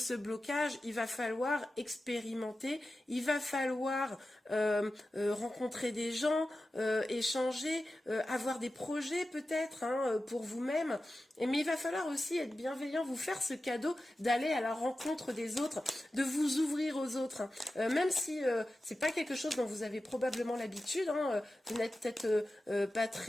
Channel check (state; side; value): normal; both; correlation 0.93